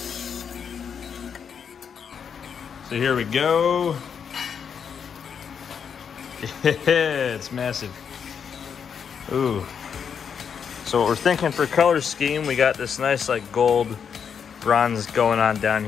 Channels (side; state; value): right; quieter; 7.1 dB